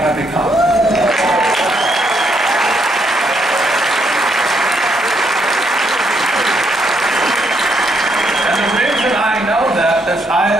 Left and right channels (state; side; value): normal; both; correlation 0.74